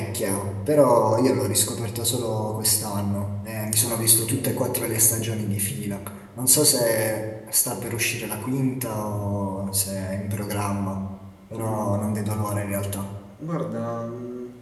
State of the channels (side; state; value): both; identical; correlation 1.00